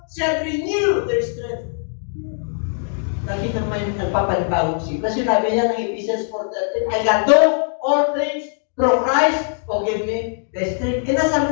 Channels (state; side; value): silent; right; digital silence